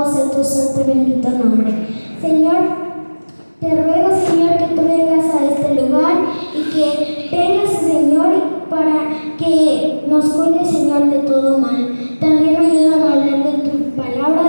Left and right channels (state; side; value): inverted; both; correlation -1.00